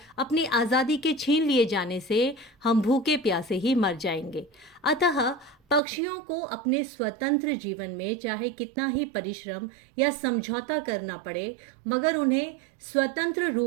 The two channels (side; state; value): left; drops out; at 5.8 s